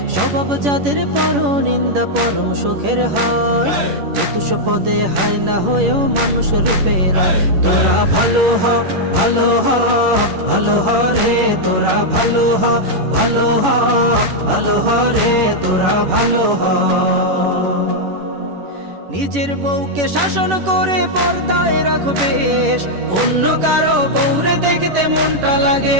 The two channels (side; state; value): left; late; 11 ms